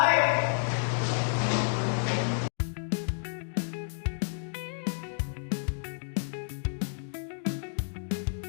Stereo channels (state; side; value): silent; right; digital silence